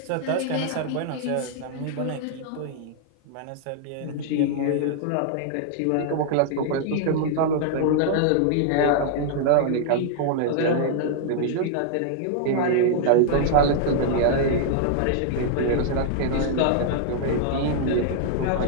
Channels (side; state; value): both; different; correlation -0.01